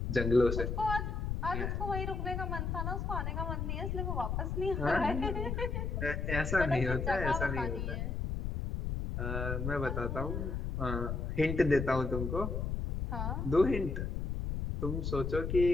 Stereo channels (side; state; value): left; noise; rumble, 2 dB below the sound